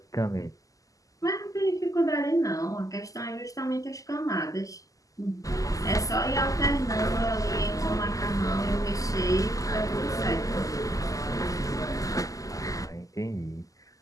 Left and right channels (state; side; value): late; right; 0.17 ms